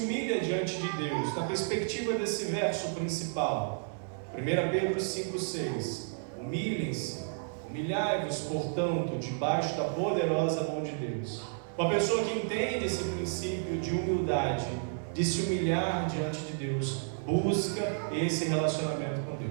diante de Deus, na perspectiva desse verso principal, 1 Pedro 5,6, humilhem-se, humilhai-vos, portanto, debaixo da poderosa mão de Deus. Uma pessoa que entende esse princípio de humildade, de se humilhar diante de Deus, busca esse relacionamento com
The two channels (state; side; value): silent; left; 57 dB below the other